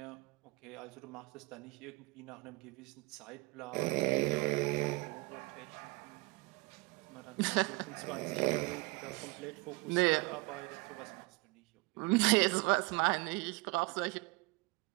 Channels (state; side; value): quieter; left; 25.9 dB